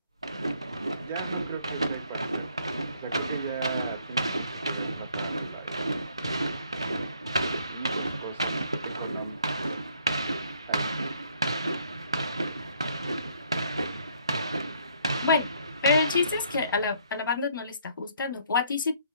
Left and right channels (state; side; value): inverted; both; correlation -0.65